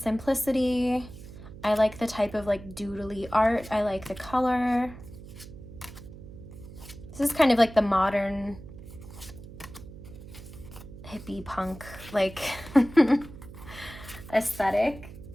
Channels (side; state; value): right; noise; hum, 15 dB below the sound